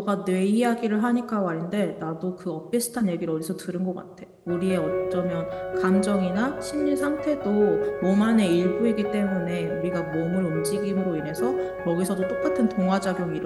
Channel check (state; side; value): identical; both; correlation 1.00